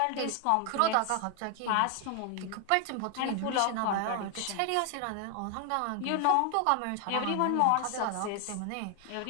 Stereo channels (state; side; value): different; both; correlation 0.00